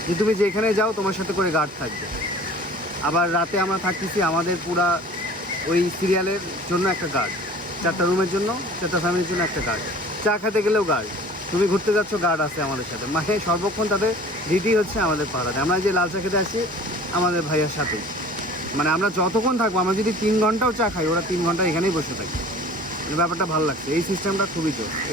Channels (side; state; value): both; normal; correlation 0.45